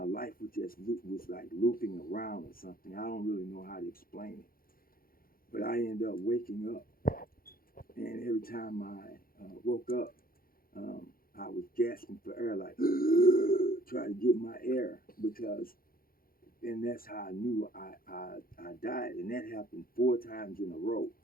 was like looping around or something. I don't really know how to explain it, but I ended up waking up, and every time I woke up, I was gasping for air, like trying to get my air because, and that's how I knew I died, and that happened 4 times in a row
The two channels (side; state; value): right; late; 0.42 ms